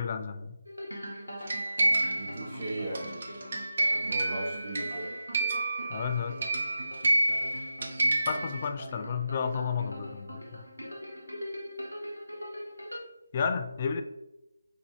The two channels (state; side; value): inverted; both; correlation -0.88